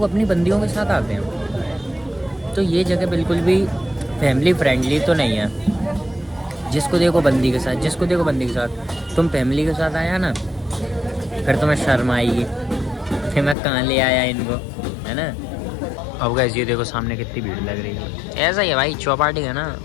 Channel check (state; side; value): drops out; right; at 13.6 s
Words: अपनी बंदियों के साथ आते हैं, तो ये जगह बिल्कुल भी फैमिली फ्रेंडली तो नहीं है। जिसको देखो बंदी के साथ, जिसको देखो बंदी के साथ। तुम फैमिली के साथ आया ना, फिर तुम्हें शर्म आएगी, फिर मैं कहाँ ले आया इनको, है ना। अब गाइस ये देखो सामने कितनी भीड़ लग रही है। ऐसा ही है भाई, चौपाटी है ना